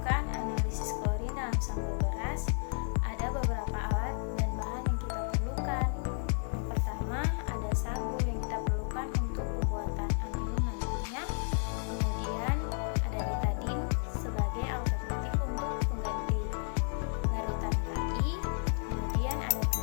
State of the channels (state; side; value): silent; right; 56 dB below the other